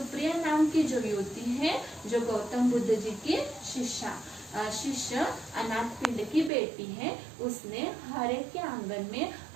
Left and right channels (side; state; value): left; drops out; at 6.5 s